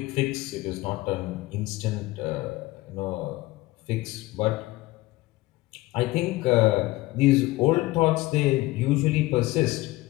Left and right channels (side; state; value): right; quieter; 19.4 dB